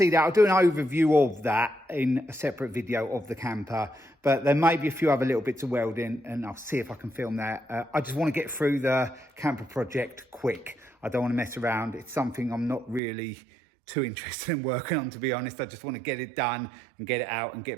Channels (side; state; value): left; drops out; at 13.0 s